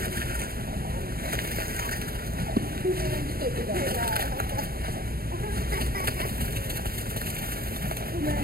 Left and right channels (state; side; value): late; left; 0.44 ms